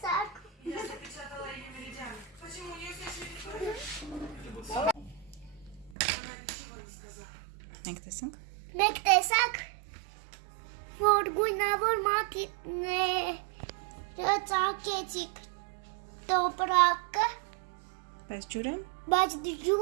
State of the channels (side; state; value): left; drops out; at 6.0 s